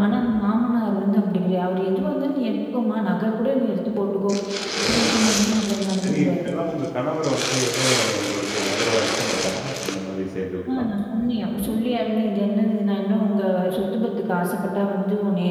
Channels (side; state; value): both; identical; correlation 1.00